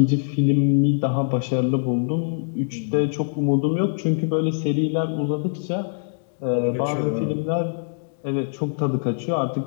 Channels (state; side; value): silent; right; digital silence